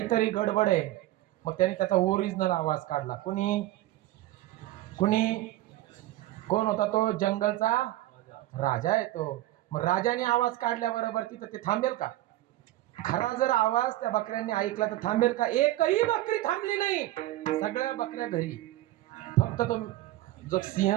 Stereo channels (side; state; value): left; quieter; 16.0 dB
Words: गडबड आहे. मग त्याने त्याचा ओरिजिनल आवाज काढला. कोण होता तो? जंगलचा राजा आहे तो. मग राजाने आवाज काढल्याबरोबर तिथं ते थांबेल का? खरा जर आवाज त्या बकऱ्यांनी ऐकला तर थांबेल का? एकही बकरी थांबली नाही. सगळ्या बकऱ्या घरी. फक्त तो जो सिंह